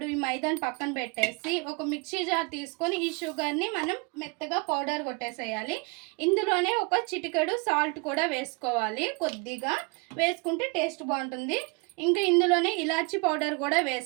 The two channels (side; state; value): left; quieter; 30.8 dB